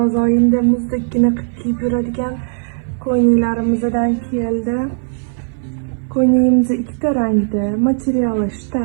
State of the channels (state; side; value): silent; left; 59 dB below the other